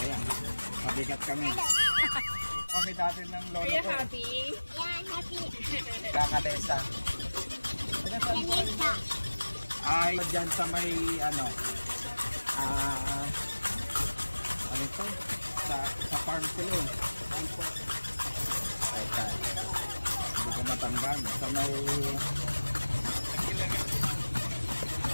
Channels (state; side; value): inverted; both; correlation -1.00